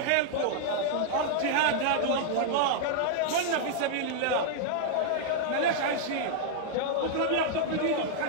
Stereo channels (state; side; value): different; both; correlation -0.01